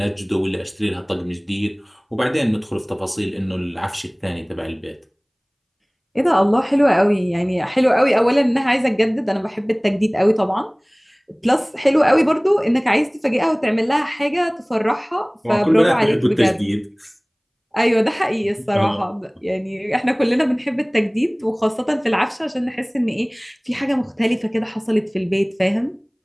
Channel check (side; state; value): both; identical; correlation 1.00